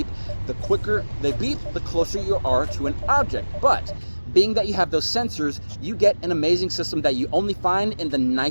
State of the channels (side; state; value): both; inverted; correlation -1.00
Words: The quicker they beep, the closer you are to an object. But Being that you have those sensors, you get an amazing system that you only find in the